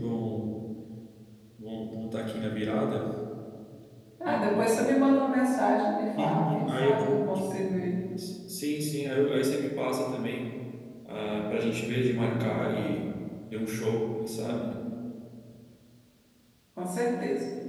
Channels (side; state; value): both; identical; correlation 1.00